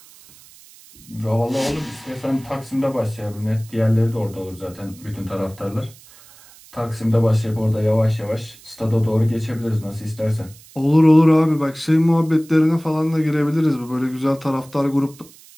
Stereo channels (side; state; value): right; noise; hiss, 23 dB below the sound